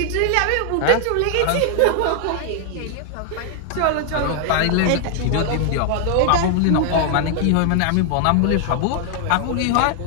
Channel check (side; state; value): both; different; correlation 0.00